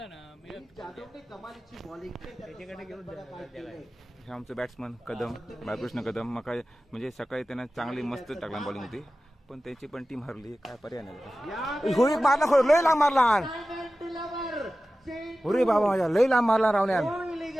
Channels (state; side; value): normal; both; correlation 0.95